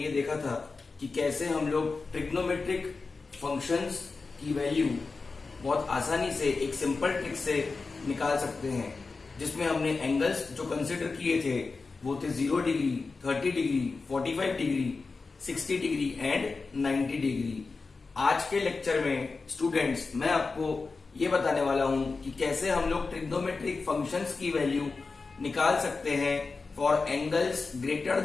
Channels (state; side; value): quieter; right; 4.2 dB